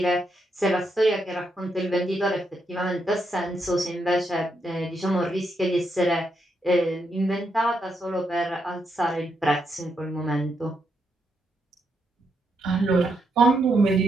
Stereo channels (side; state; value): both; normal; correlation 0.80